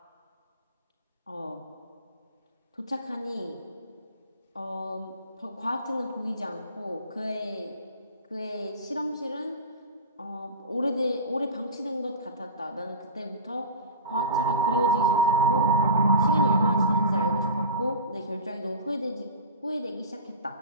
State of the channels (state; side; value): inverted; both; correlation -0.32